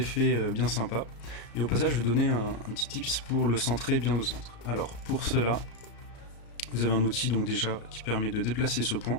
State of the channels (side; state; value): right; late; 34 ms